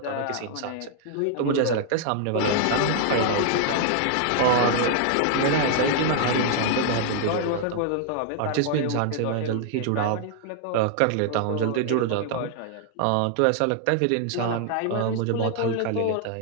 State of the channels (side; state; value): both; different; correlation 0.00